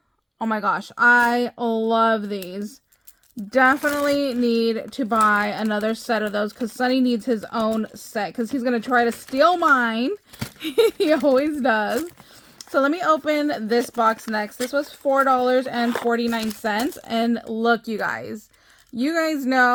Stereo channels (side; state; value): both; identical; correlation 1.00